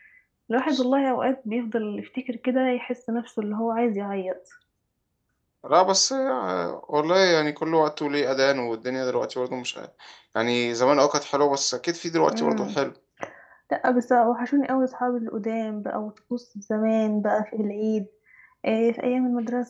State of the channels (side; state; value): both; identical; correlation 1.00